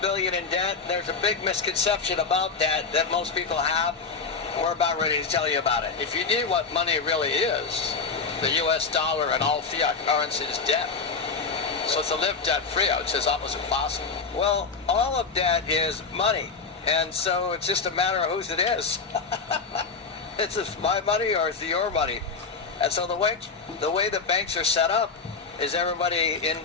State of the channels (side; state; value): right; quieter; 4.8 dB